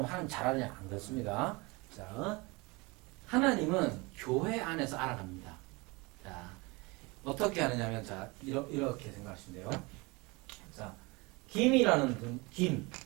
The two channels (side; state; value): left; quieter; 25.7 dB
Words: 하나님 잘 아느냐? 안 그렇습니다. 자, 하나님은 교회 안에서 알아갑니다. 자, 어떻게 하느냐면, 자, 이렇게 생각하시면 돼요. 자, 김이라는 분,